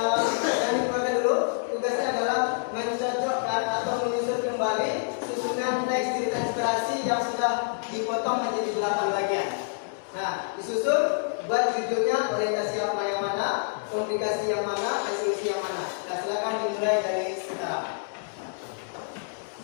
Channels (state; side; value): silent; right; digital silence